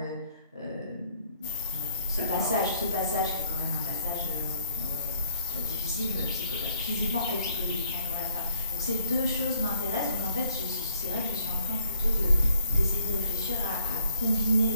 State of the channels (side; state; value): both; inverted; correlation -0.63